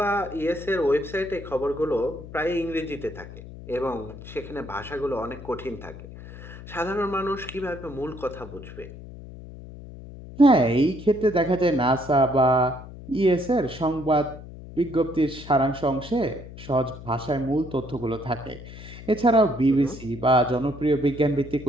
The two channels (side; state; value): left; noise; hum, 14 dB below the sound